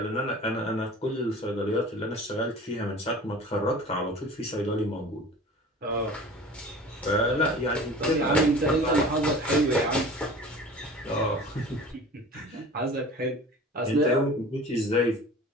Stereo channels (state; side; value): normal; both; correlation 0.40